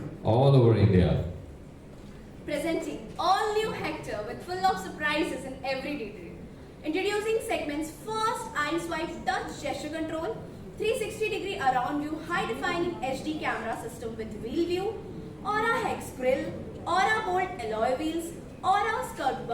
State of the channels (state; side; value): identical; both; correlation 1.00